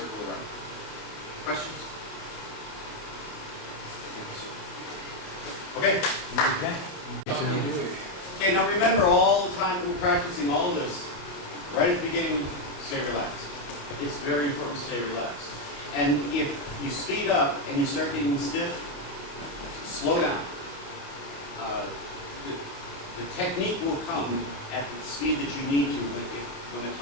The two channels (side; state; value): right; late; 28 ms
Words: around. Questions? Okay? Okay, now remember all the time that we're practicing all this, right at the beginning, stay relaxed. It's very important to stay relaxed. And if you speed up and you start getting stiff, slow down. The technique will come at the speed that you need to when the